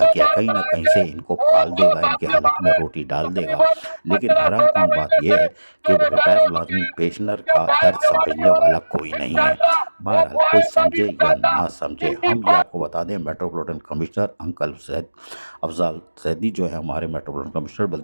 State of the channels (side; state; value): both; inverted; correlation -1.00